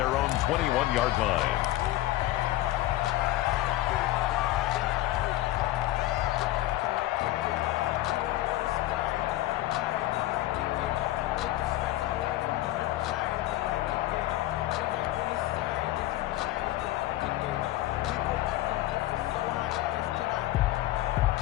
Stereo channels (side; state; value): right; quieter; 15.8 dB